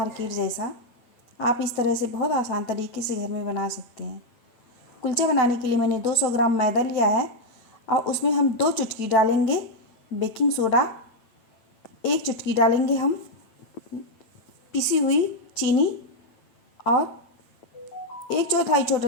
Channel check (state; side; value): late; right; 9.0 ms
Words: जैसा। आप इस तरह से बहुत आसान तरीके से घर में बना सकते हैं। कुलचा बनाने के लिए मैंने 200 ग्राम मैदा लिया है और उसमें हम 2 चुटकी डालेंगे बेकिंग सोडा, 1 चुटकी डालेंगे हम पिसी हुई चीनी और 1/4